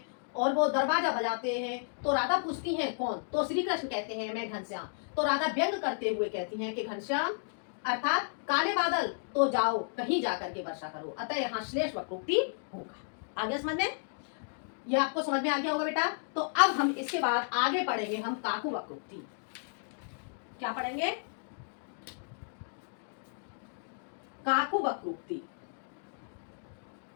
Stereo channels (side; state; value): right; silent; digital silence